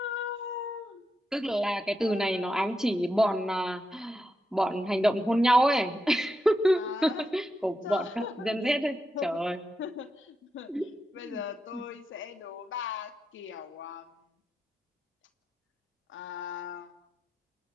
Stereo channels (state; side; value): normal; both; correlation 0.86